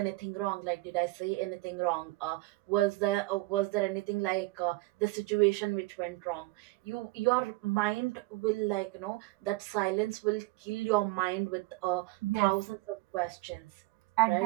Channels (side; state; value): left; quieter; 21.2 dB